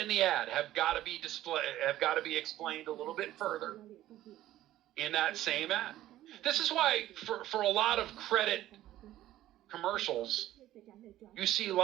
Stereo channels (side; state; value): left; quieter; 14.1 dB